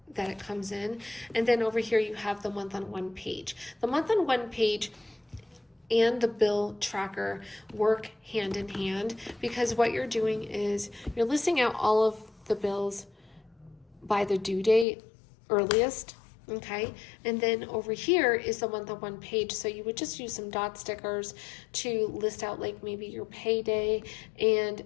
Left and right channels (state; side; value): drops out; right; at 14.9 s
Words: that it comes in. And then over here you have the month-on-one page. The month-on-one page and the bill tracker work hand in hand, because what you're doing is you're listing out all of the bills by the due date earliest. Okay, and then over here is the month-on-one page. So you would just use some dot stickers to list out like maybe your payday, and